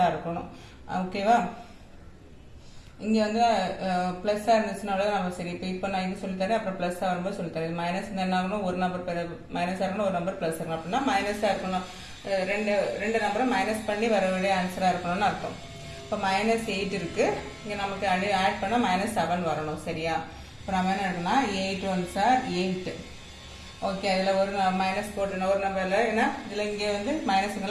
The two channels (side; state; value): both; identical; correlation 1.00